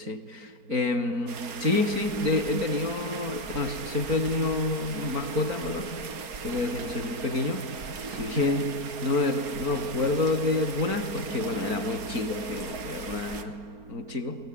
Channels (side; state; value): left; late; 4.4 ms